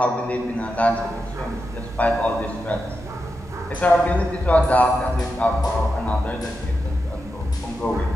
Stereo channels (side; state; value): both; normal; correlation 0.88